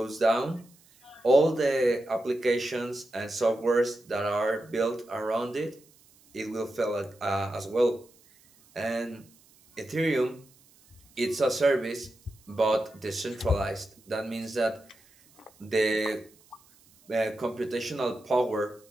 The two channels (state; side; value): noise; right; hiss, 29 dB below the sound